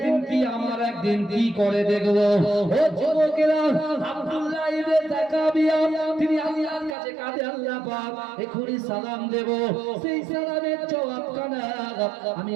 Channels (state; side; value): drops out; left; at 7.0 s